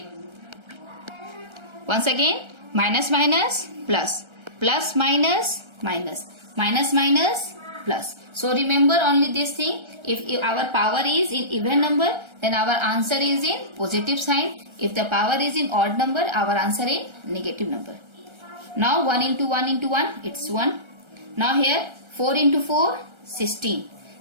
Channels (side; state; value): left; late; 1.3 ms